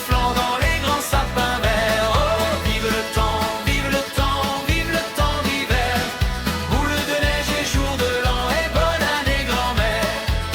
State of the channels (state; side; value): identical; both; correlation 1.00